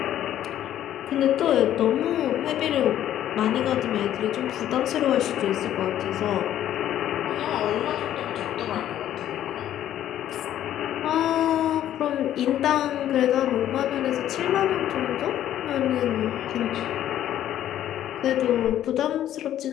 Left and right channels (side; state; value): right; quieter; 11.7 dB